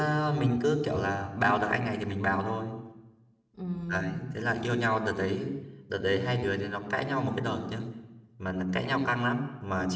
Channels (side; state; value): both; identical; correlation 1.00